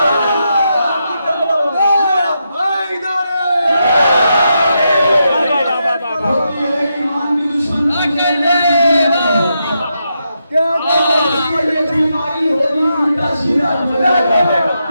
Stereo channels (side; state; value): both; inverted; correlation -0.84